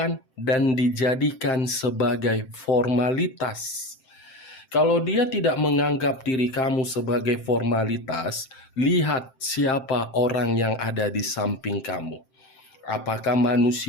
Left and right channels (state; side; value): late; right; 7.7 ms